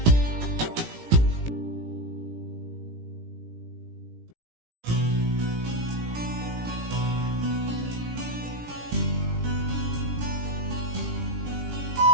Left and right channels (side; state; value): left; late; 17 ms